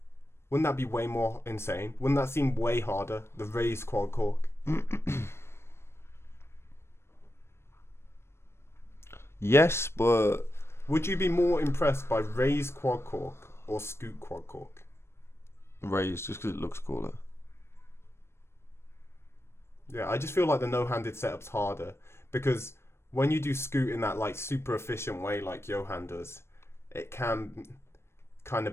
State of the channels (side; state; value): right; late; 0.12 ms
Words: Wouldn't that be way more insane? Wouldn't that seem way harder? The raise quad cork. yes, but Would you be more impressed by raise quad cork or scoot quad cork? raised just because it looks cooler. Yeah, I just feel like the no-handed setup's harder because when you do scoot in that like super efficient way like Johan does, it can kind of